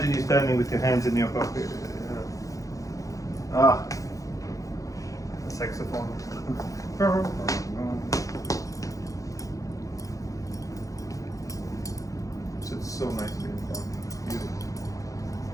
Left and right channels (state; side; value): late; right; 0.16 ms